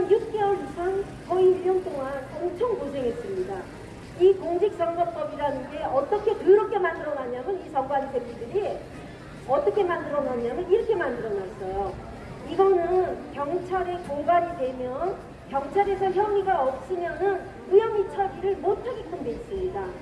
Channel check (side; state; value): both; identical; correlation 1.00